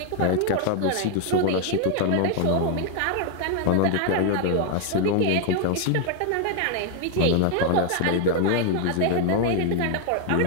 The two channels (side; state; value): both; different; correlation 0.00